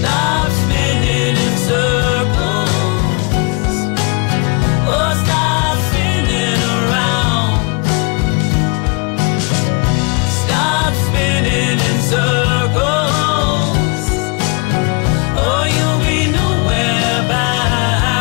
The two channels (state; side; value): quieter; right; 32.5 dB